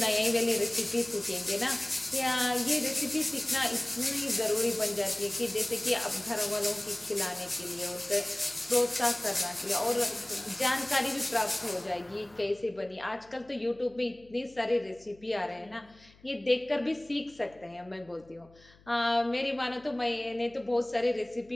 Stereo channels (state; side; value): noise; left; hum, 27 dB below the sound